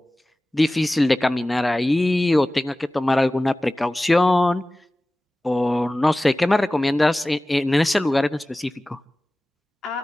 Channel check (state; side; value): normal; both; correlation 0.97